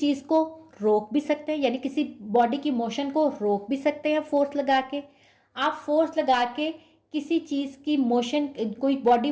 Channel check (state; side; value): identical; both; correlation 1.00